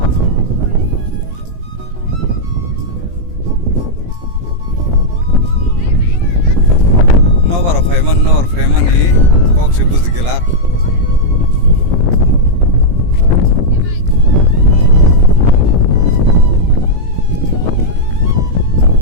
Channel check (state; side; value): late; left; 17 ms